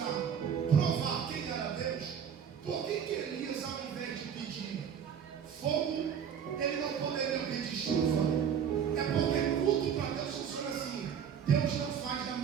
provar quem era Deus, por que Elias, ao invés de pedir fogo, ele não poderia pedir chuva? É porque tudo para Deus funciona assim. Deus não faz na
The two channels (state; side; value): quieter; left; 8.0 dB